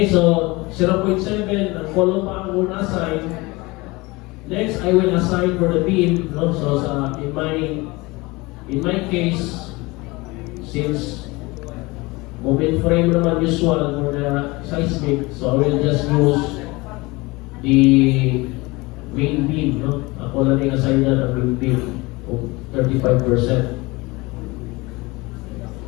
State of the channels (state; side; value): quieter; right; 23.3 dB